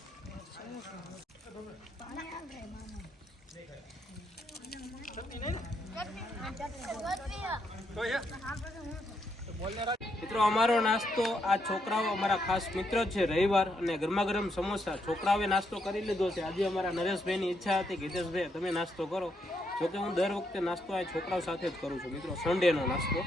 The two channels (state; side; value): normal; both; correlation 0.77